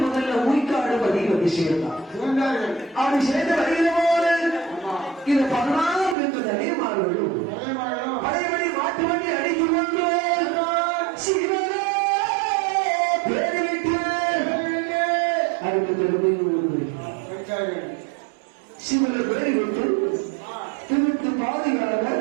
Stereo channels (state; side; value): drops out; left; at 6.2 s